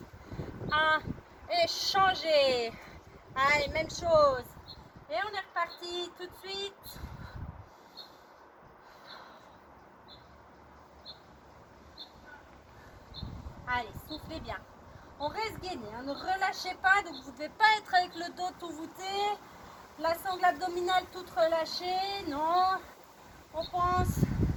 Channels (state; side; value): identical; both; correlation 1.00